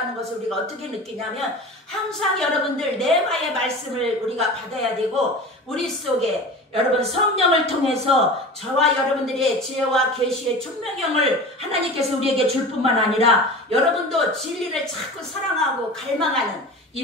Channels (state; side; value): normal; both; correlation 0.34